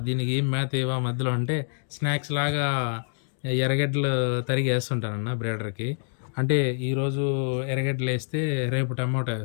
దీనికి ఏం మేత ఎయవా మధ్యలో అంటే, స్నాక్స్ లాగా ఎర్రగడ్డలు తరిగి ఏస్తుంటానన్న బ్రీడర్‌కి. అంటే ఈరోజు ఎర్రగడ్డలేస్తే రేపు టమాటో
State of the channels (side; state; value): right; silent; digital silence